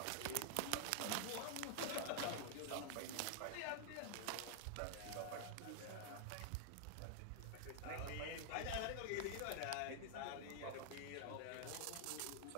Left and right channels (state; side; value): different; both; correlation 0.00